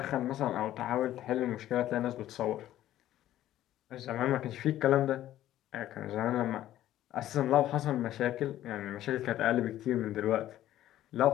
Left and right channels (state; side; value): quieter; right; 13.2 dB